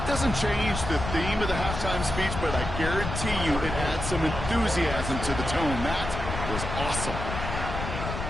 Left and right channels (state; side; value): noise; left; rumble, 5 dB below the sound